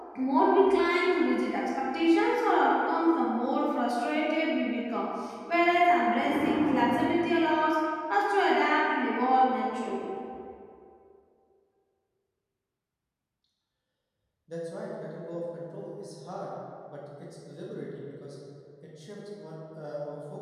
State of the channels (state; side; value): identical; both; correlation 1.00